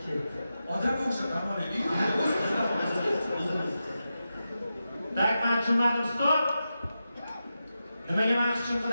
Odamga o'xshab namoylik. Tak, men tushunmadim, stop. Nimaga meni hech kim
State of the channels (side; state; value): both; inverted; correlation -0.90